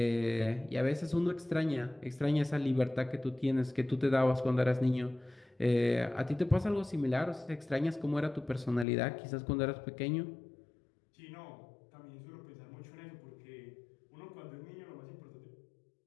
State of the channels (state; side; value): drops out; right; at 8.8 s